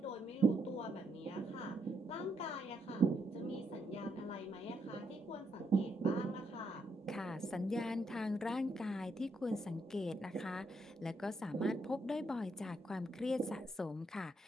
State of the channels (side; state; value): both; normal; correlation 0.77